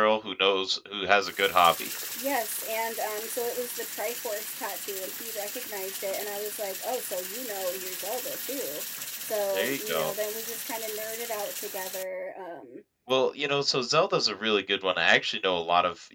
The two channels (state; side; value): identical; both; correlation 1.00